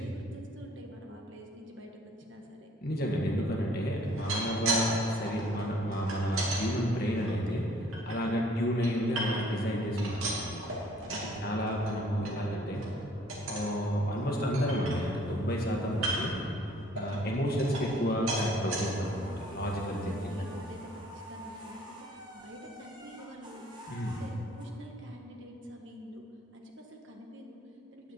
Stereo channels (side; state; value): both; normal; correlation 0.58